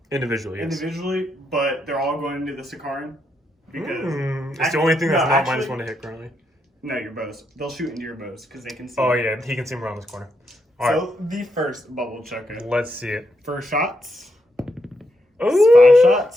Individually, yes. individually, but they're all going into the Sakaran. Because It's the only thing that's no, not actually- -1 to hit currently. No, your bows. They'll shoot into your bows because they can see. Oh yeah, he can see him around this corner. All right, So the first bubble chucker. let's see it. First shots. Ooh, 5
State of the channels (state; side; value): normal; both; correlation 0.80